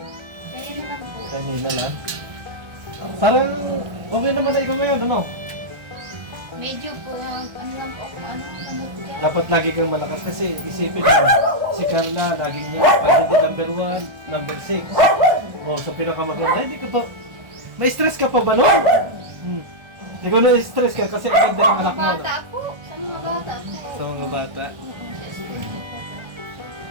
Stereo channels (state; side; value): late; left; 1.3 ms